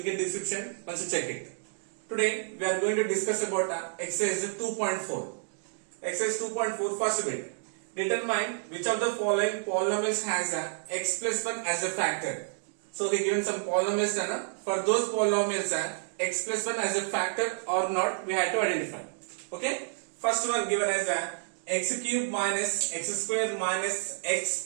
in description once you check it. Today we are going to discuss about exercise 2.4. Exercise 2.4 first bit. Determine which of the following polynomials has x plus 1 as a factor. So he given some polynomials for those polynomials x plus 1 as a factor or not we have to identify. Okay. First one given as x cube minus x square minus x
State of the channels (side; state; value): left; silent; digital silence